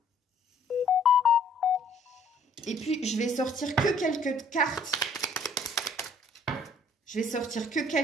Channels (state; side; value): normal; both; correlation 0.59